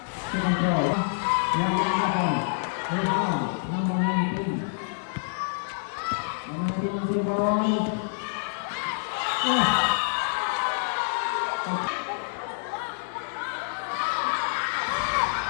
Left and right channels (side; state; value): right; silent; 60 dB below the other